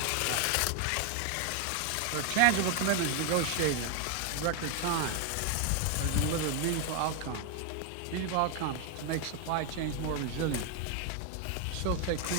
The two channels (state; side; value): different; both; correlation 0.01